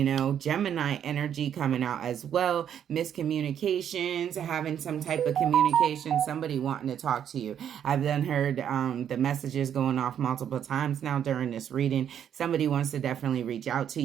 know. Gemini energy coming out as well. Miscommunications, having some type of communication, somebody wanting to talk to you. I've then heard the messages going off multiple times now during this reading. Somebody wants to definitely reach out to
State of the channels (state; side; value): quieter; left; 9.2 dB